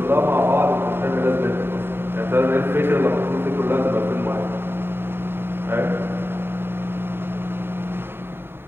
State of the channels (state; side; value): late; left; 0.11 ms